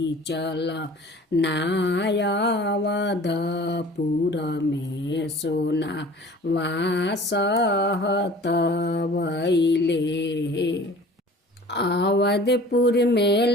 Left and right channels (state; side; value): normal; both; correlation 0.46